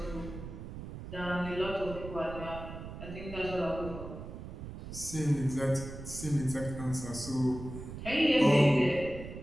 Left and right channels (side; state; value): right; noise; rumble, 10 dB below the sound